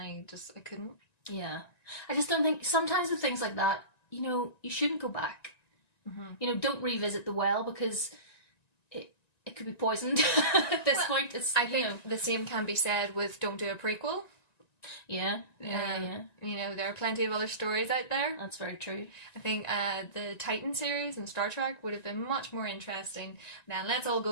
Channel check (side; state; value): right; late; 1.9 ms